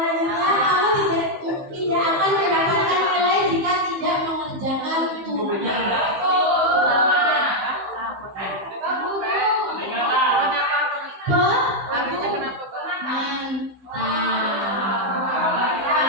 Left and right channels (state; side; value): late; left; 15 ms